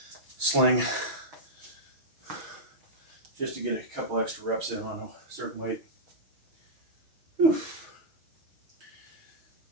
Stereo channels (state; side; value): late; left; 6.0 ms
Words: sling, just to get a couple extra reps in on a certain weight. Whew.